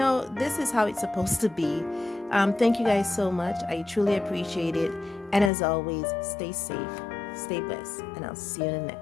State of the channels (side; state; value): right; drops out; at 5.5 s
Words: this is how it's supposed to be. Thank you guys so much. I truly appreciate it. And as always, stay safe, stay blessed, and I'll see you in the